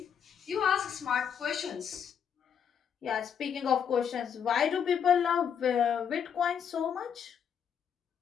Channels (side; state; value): right; quieter; 7.8 dB